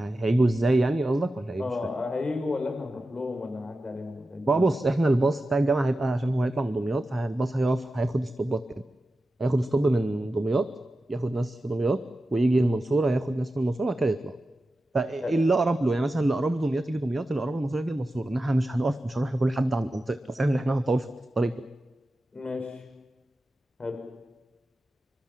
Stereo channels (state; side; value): normal; both; correlation 0.92